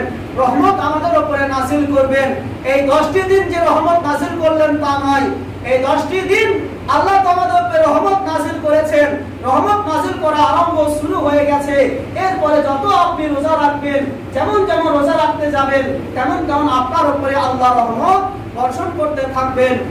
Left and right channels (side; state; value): both; identical; correlation 1.00